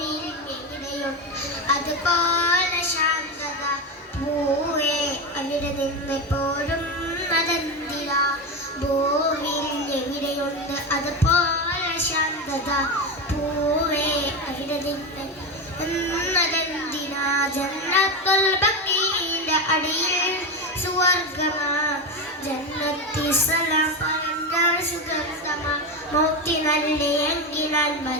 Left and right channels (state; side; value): normal; both; correlation 0.15